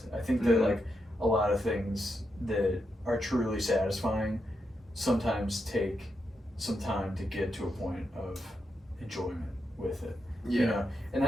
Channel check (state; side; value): normal; both; correlation 0.84